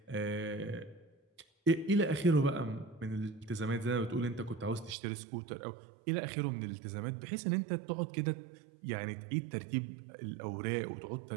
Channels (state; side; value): drops out; left; at 5.0 s